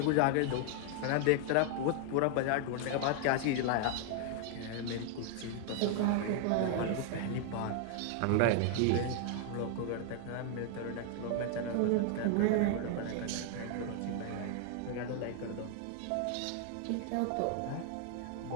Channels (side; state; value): both; different; correlation 0.00